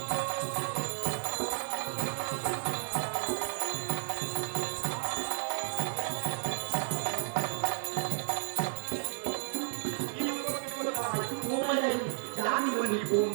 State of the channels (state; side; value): silent; left; 56 dB below the other